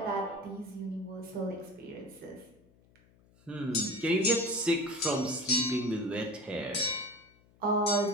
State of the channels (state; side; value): noise; left; hum, 30 dB below the sound